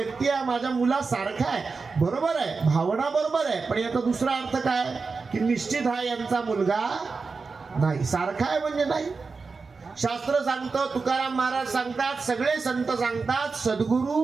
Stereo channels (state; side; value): quieter; left; 4.5 dB